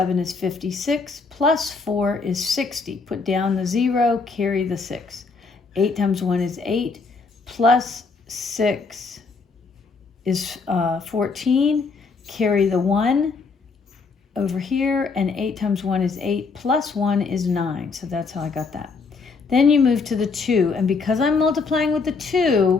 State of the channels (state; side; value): quieter; right; 4.6 dB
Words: is 56, plus 4 is 60. Put down the 0, carry the 6. 8 times 1 is 8, plus 6 is 14, carry the 1 over here, and 8 times 1 is 8, plus 1 is 9. So that's how I got that. Then you move to the 2, and because I'm multiplying with the